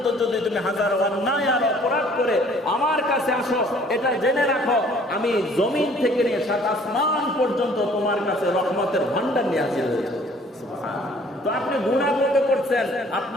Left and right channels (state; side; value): normal; both; correlation 0.56